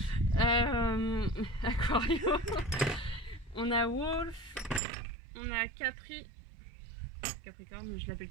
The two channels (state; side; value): drops out; left; at 4.8 s